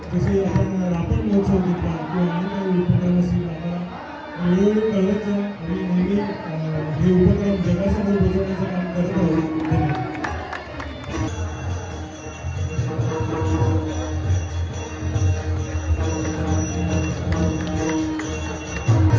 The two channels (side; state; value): both; identical; correlation 1.00